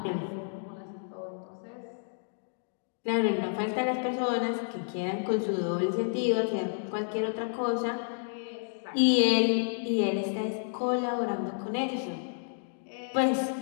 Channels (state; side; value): silent; right; digital silence